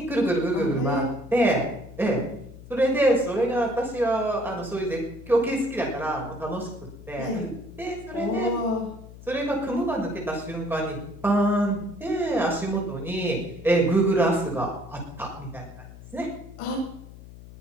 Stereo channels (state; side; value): noise; left; hum, 17 dB below the sound